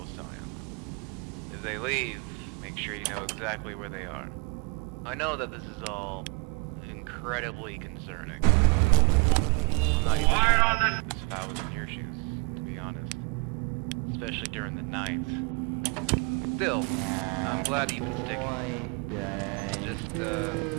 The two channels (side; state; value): left; quieter; 31.9 dB